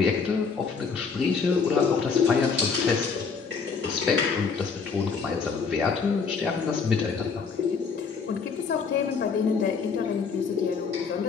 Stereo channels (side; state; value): right; quieter; 5.4 dB